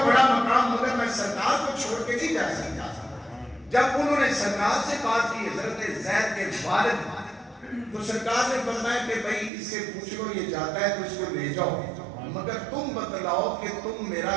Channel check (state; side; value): drops out; left; at 9.5 s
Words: بڑا مقام، مگر میں سرکار کو چھوڑ کے نہیں جا سکتا۔ جب انہوں نے سرکار سے بات کی حضرت زید کے والد، تو سرکار نے فرمایا کہ بھائی اس سے پوچھ لو یہ جاتا ہے تو اس کو لے جاؤ، مگر تم بتلاؤ کہ تم میرا